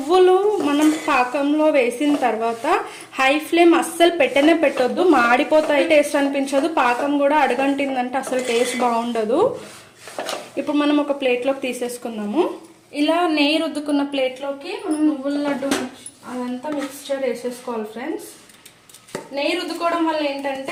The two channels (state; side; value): identical; both; correlation 1.00